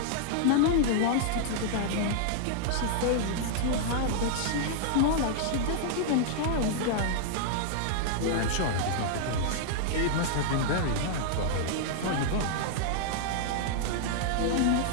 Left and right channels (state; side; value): different; both; correlation -0.01